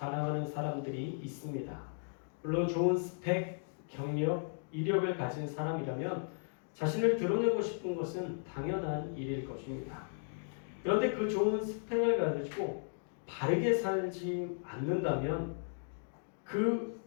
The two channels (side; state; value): right; silent; digital silence